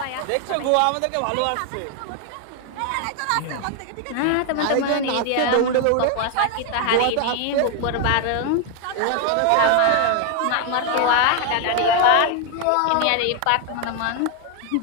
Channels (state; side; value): different; both; correlation 0.01